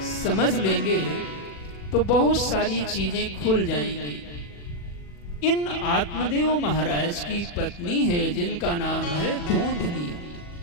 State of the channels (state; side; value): late; right; 40 ms